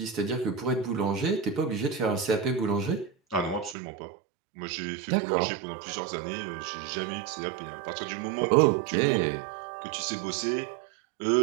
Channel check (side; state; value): left; drops out; at 3.8 s